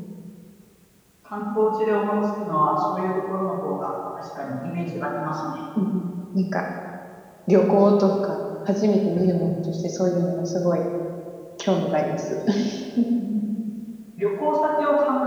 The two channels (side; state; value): both; identical; correlation 1.00